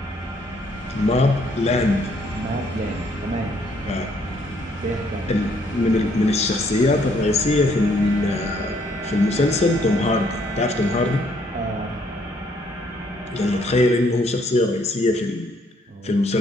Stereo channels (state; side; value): normal; both; correlation 0.67